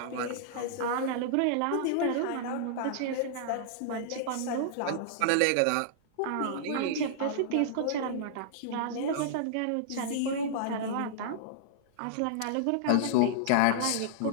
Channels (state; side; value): different; both; correlation -0.01